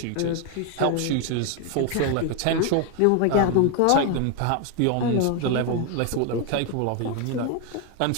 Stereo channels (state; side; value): different; both; correlation 0.01